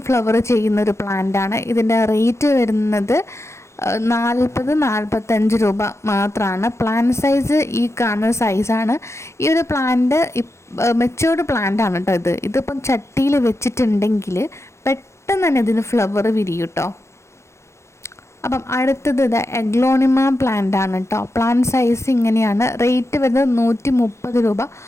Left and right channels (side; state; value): right; late; 0.13 ms